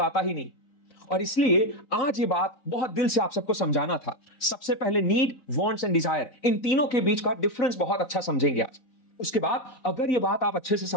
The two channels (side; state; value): right; late; 3.9 ms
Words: ही नहीं। और इसलिए आज ये बात बहुत दिल से आप सबको समझाना था। सबसे पहले नीड, वांट्स एंड डिजायर, इन तीनों के बीच का डिफरेंस बहुत अच्छा समझेंगे आज। उसके बाद अगर ये बात आप अच्छे से